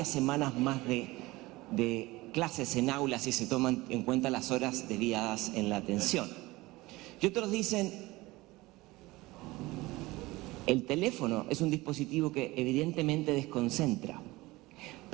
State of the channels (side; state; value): left; quieter; 20.4 dB